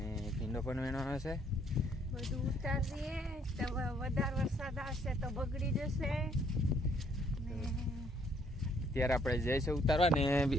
ભીંડો પણ વેણવાનો છે। બધું ઉતારીએ તો વધારે વરસાદ આવશે તો બગડી જશે ને અત્યારે આપણે જઈશું ઉતારવા ને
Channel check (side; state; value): both; normal; correlation 0.66